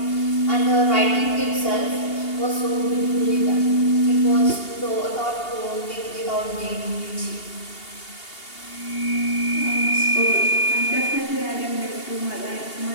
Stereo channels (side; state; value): right; late; 2.8 ms